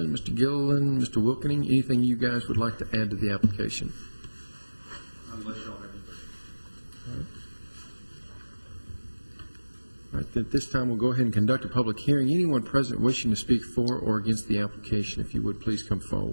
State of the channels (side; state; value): both; inverted; correlation -1.00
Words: Mr. Gilliland, Mr. Wilkening, anything you guys would like to add to the application? Unless y'all have anything. All right, then at this time we'll go ahead and conduct a public hearing. Anyone present wishing to speak for or against the application, if you would please come